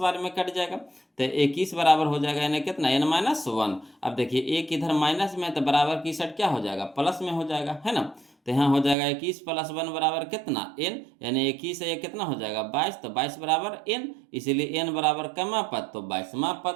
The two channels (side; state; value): left; drops out; at 9.0 s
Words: बार में कट जाएगा, तो 21 बराबर हो जाएगा यानी कितना एन माइनस वन। अब देखिए एक इधर माइनस में, तो बराबर की साइड क्या हो जाएगा, प्लस में हो जाएगा, है ना। तो यहाँ हो जाएगा 21 + 1 बराबर कितना एन, यानी 21 से ये कितना हो जाएगा 22, तो 22 बराबर एन, इसीलिए एन बराबर कमा पद, तो 22वां